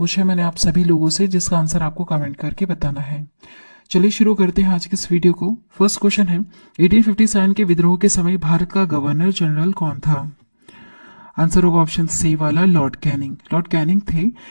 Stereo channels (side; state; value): both; inverted; correlation -1.00